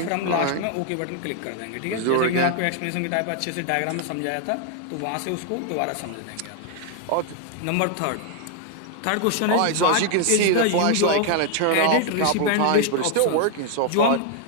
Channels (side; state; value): both; different; correlation 0.00